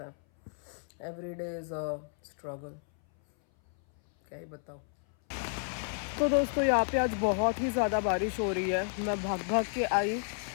है। Every day is a struggle, क्या ही बताऊँ। तो दोस्तों यहाँ पे आज बहुत ही ज़्यादा बारिश हो रही है। मैं भाग भाग के आई,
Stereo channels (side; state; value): right; silent; 57 dB below the other